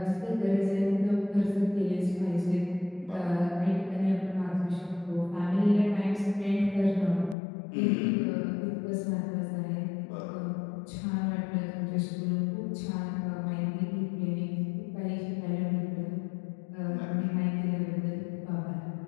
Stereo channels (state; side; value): drops out; right; at 7.4 s